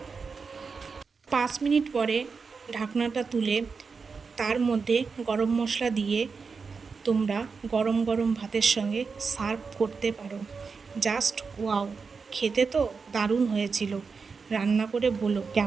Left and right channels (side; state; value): left; quieter; 5.1 dB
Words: 5 মিনিট পরে ঢাকনাটা তুলে তার মধ্যে গরম মশলা দিয়ে তোমরা গরম গরম ভাতের সঙ্গে সার্ভ করতে পারো। Just wow! খেতে তো দারুণ হয়েছিল। রান্না করে বলো